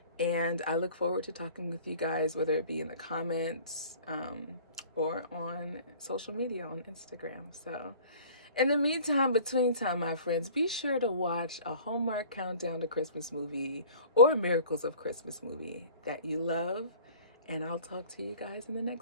And I look forward to talking with you guys, whether it be in the comments or on social media, on Instagram. So in the meantime, between time, my friends, be sure to watch a Hallmark Countdown to Christmas movie or Miracles of Christmas movie that you love. And I'll talk to you guys in the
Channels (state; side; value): inverted; both; correlation -0.47